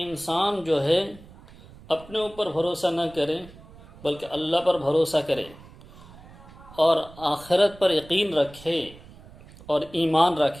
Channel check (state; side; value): noise; right; rumble, 21 dB below the sound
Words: جو ہے اپنے اوپر بھروسہ نہ کرے بلکہ اللہ پر بھروسہ کرے اور آخرت پر یقین رکھے اور ایمان